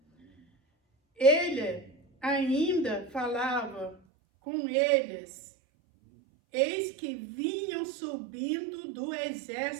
Ele ainda falava com eles, eis que vinham subindo do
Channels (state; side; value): drops out; left; at 4.0 s